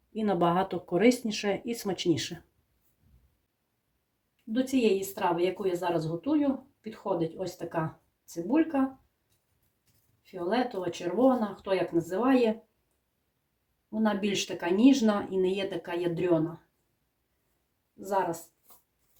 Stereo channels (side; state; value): both; identical; correlation 1.00